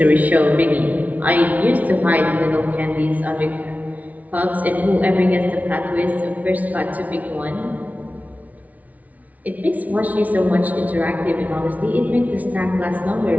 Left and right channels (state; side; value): late; left; 0.072 ms